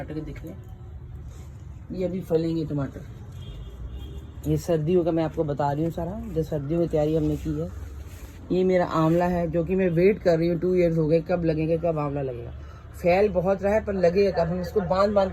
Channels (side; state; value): both; identical; correlation 1.00